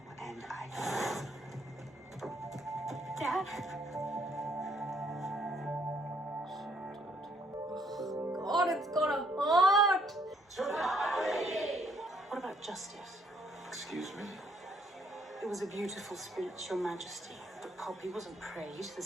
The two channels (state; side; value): normal; both; correlation 0.68